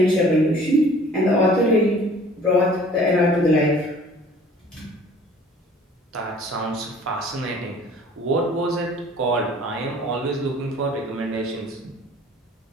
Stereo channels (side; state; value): both; normal; correlation 0.51